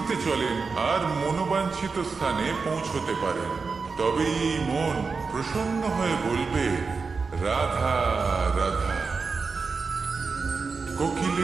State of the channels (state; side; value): quieter; left; 4.7 dB